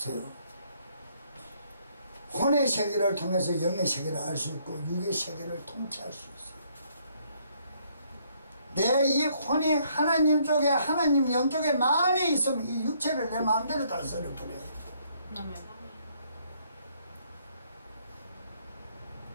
혼의 세계를 통해서 영의 세계를 알 수 있고 육의 세계를 통치할 수 있어요. 내 이 혼이 하나님 쪽에 하나님 영 쪽에 많이 있으면 이 육체를 내 마음대로 다스려 버려요. 아멘.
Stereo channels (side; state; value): both; inverted; correlation -0.68